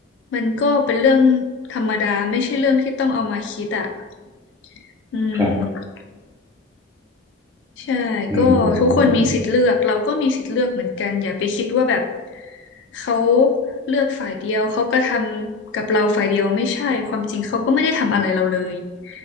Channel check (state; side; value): quieter; right; 3.9 dB